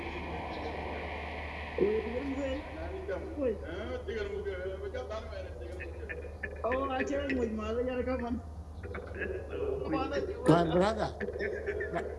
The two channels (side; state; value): both; identical; correlation 1.00